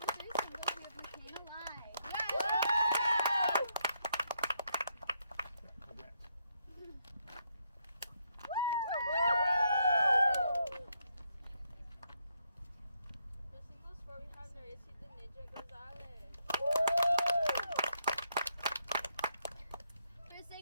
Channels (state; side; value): inverted; both; correlation -0.76